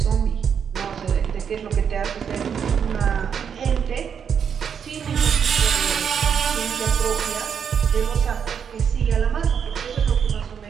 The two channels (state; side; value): quieter; left; 7.4 dB